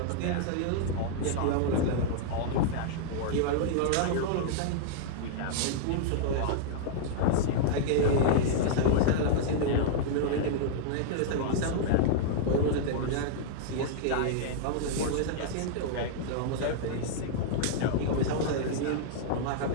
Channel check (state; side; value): different; both; correlation -0.02